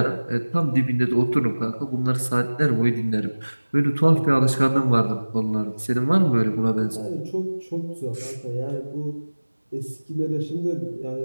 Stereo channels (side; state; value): both; inverted; correlation -1.00